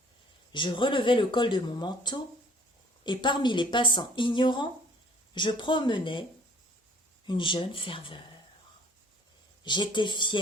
Je relevais le col de mon manteau, et parmi les passants ignorants, je promenais une jeune ferveur. J'étais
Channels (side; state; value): both; normal; correlation 0.55